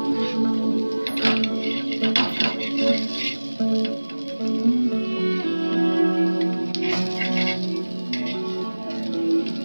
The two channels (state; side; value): inverted; both; correlation -1.00